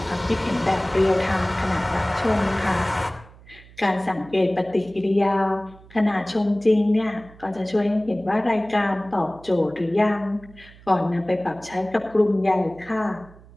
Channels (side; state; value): right; noise; hum, 23 dB below the sound